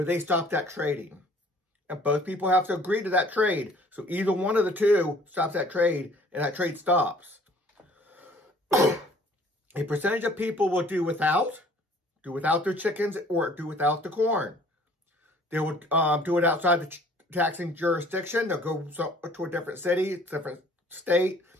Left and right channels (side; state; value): both; normal; correlation 0.54